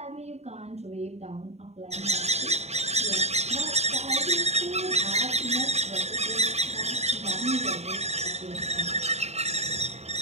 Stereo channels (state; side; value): late; left; 0.31 ms